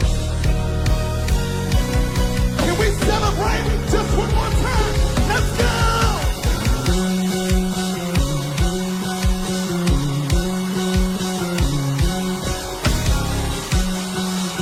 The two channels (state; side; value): identical; both; correlation 1.00